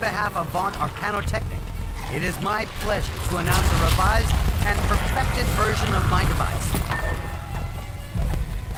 of Vaunt Arcanotechnic, it is my pleasure to announce a revised and perfected version of my device.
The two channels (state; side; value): identical; both; correlation 1.00